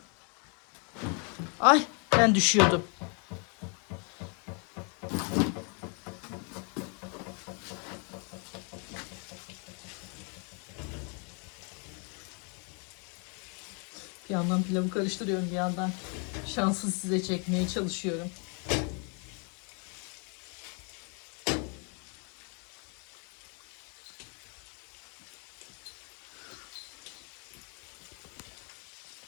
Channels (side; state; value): right; quieter; 37.2 dB